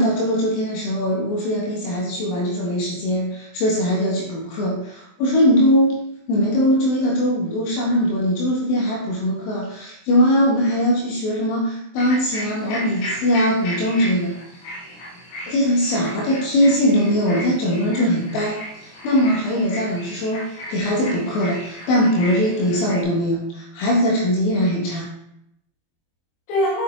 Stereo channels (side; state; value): right; late; 23 ms